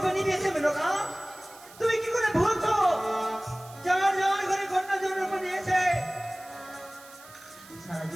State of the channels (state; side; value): noise; right; hiss, 21 dB below the sound